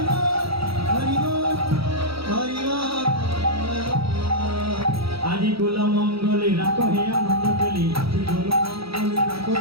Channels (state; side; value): late; left; 0.76 ms